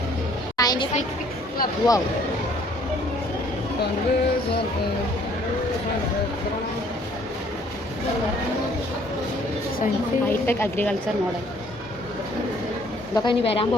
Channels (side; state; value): both; normal; correlation 0.60